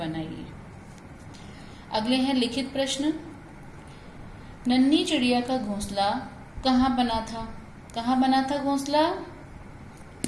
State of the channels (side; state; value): both; identical; correlation 1.00